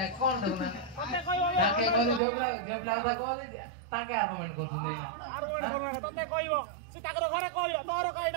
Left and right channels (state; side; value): drops out; left; at 2.2 s